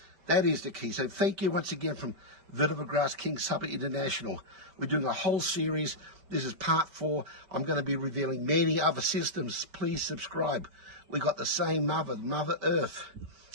That is the key. So thank you once again from Vetiver Grass King SABAH International. We're doing a whole series. This is part 4. I'm going to be revealing many other systems. Please subscribe. We got the same Mother Earth.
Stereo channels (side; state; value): left; late; 5.2 ms